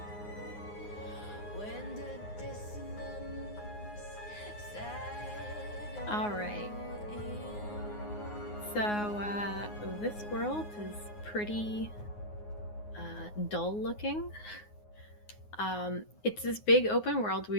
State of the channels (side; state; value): right; late; 9.6 ms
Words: when the dissonance settled All right. in. So this world is pretty dull looking. It's this big open world where